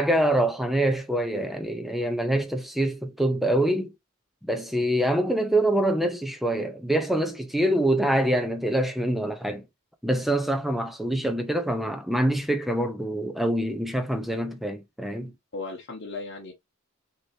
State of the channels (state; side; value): normal; both; correlation 0.78